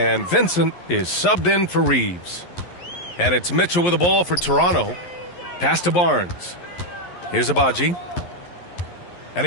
Vincent is subbed in for Reeves. And it's Mitchell with the ball for Toronto. Pass to Barnes. Here's Abaji. And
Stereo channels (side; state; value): right; late; 11 ms